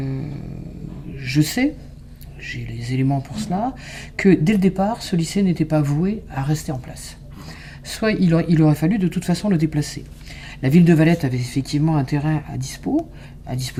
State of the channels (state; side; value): identical; both; correlation 1.00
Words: sais, j'ai les éléments pour cela, que dès le départ, ce lycée n'était pas voué à rester en place. Soit il aurait fallu de toute façon le déplacer. La ville de Valette avait effectivement un terrain à